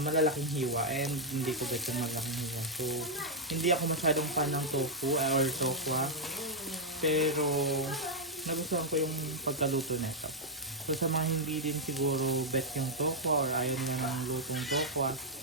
hiwa and hindi ko bet yung malaking hiwa. So, hindi ako masyadong fan ng tofu or tokwa. Pero, nagustuhan ko yung pagkaluto nito. So, sa mga hindi din siguro bet yung tokwa or ayaw na ng lutong tokwa,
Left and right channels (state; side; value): normal; both; correlation -0.04